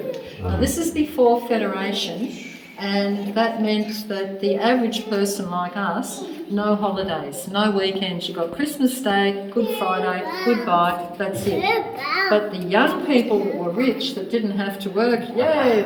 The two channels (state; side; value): identical; both; correlation 1.00